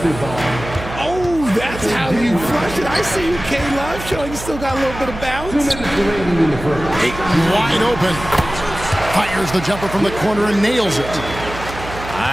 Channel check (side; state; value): right; noise; hum, 11 dB below the sound